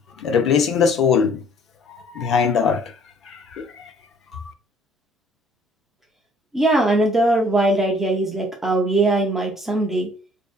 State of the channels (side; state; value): both; normal; correlation 0.57